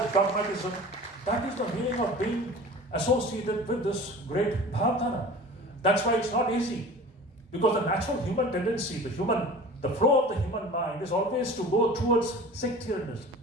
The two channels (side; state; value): both; normal; correlation 0.40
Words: dogmatism. That is the meaning of being associated with this great Bhavdhara. That's why it's not easy. Because the natural human tendency, the flow of the human mind is always to go towards sectarianism,